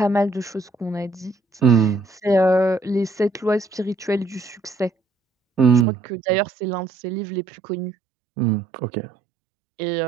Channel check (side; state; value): left; drops out; at 5.9 s